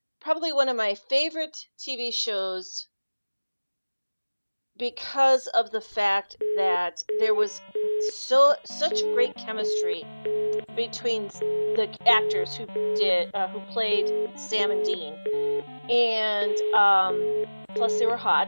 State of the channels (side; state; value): both; inverted; correlation -1.00